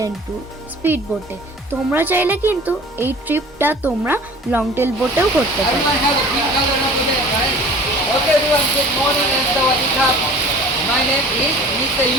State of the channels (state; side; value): normal; both; correlation 0.45